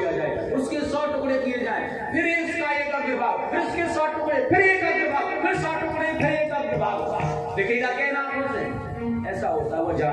जाए, उसके 100 टुकड़े किए जाए, फिर इसका एक अग्रभाग, फिर इसके 100 टुकड़े, फिर एक अग्रभाग, फिर 100 टुकड़े, फिर एक अग्रभाग, दिखेगा क्या नाम से? ऐसा होता है, वो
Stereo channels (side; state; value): both; identical; correlation 1.00